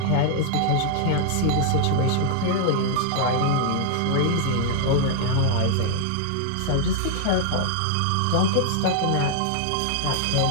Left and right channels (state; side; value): different; both; correlation 0.00